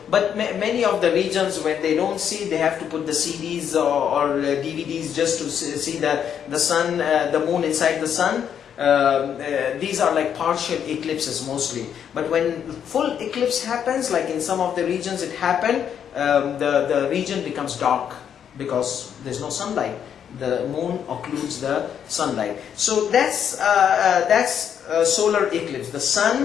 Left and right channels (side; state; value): right; quieter; 8.5 dB